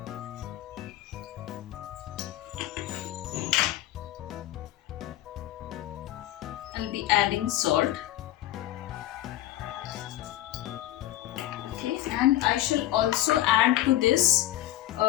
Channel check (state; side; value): quieter; right; 14.5 dB